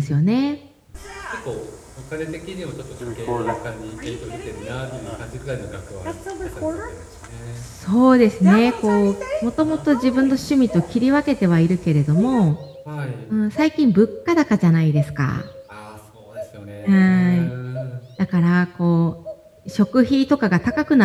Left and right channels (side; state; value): both; identical; correlation 1.00